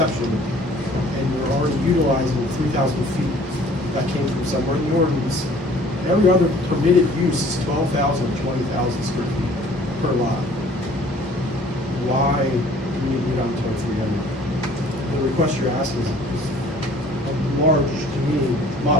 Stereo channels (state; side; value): normal; both; correlation 0.53